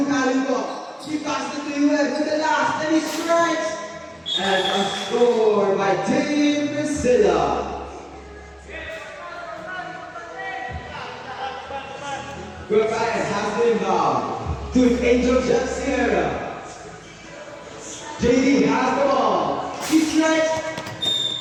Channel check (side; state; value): both; identical; correlation 1.00